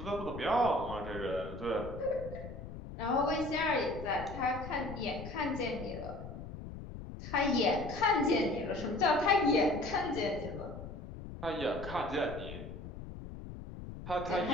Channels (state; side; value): noise; left; rumble, 10 dB below the sound